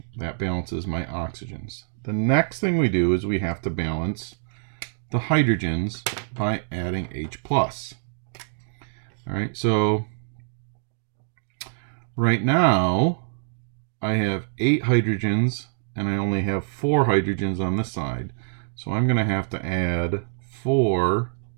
That balances my oxygens. The next thing we do is we have to balance the hydrogens by adding H+. All right, so right now I have 8 hydrogens and I only have 4 hydrogens on this side. So I'm going to have to add 4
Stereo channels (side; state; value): left; silent; digital silence